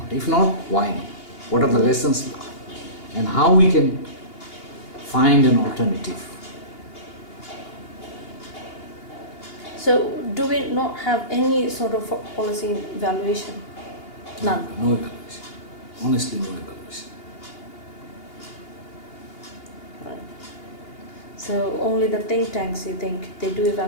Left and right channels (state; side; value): late; right; 2.8 ms